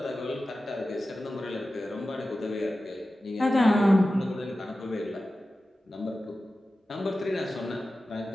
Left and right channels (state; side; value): normal; both; correlation 0.94